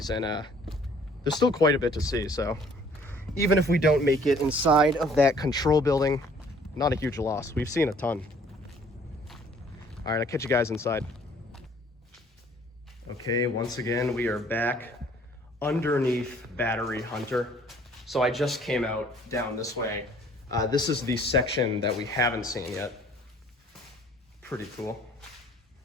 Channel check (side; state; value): both; normal; correlation 0.57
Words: and there's still quite a bit to see, so even if we don't make it inside of that control building, not a huge loss. We've seen a ton. All right, I'll catch you guys inside. Okay, once again, we are back underneath Battery Hunter. So I just came out down this way. This is the section that we haven't seen yet. Pretty cool.